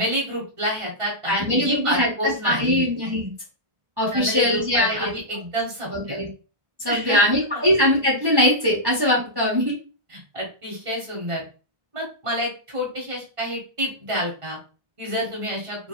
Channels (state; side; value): late; left; 1.1 ms